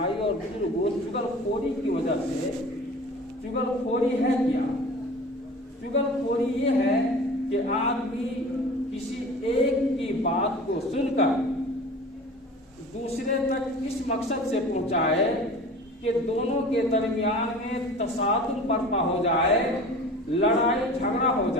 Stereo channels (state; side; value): normal; both; correlation 0.40